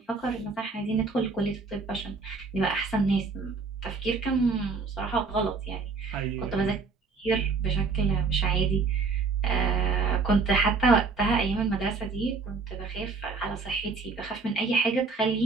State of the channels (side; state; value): left; quieter; 4.3 dB